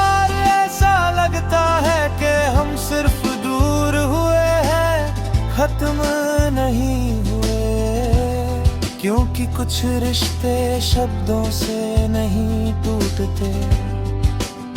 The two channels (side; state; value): both; identical; correlation 1.00